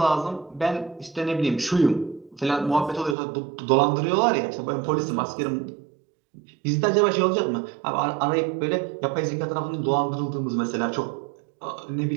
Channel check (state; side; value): drops out; left; at 3.2 s